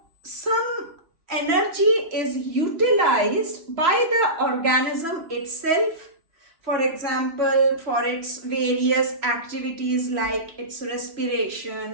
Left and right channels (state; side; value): late; left; 3.0 ms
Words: some energy is utilized by the organism itself. For example, for its various activities like its